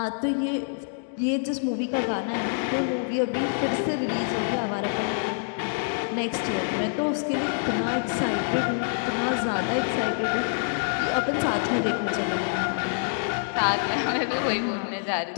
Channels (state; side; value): silent; right; digital silence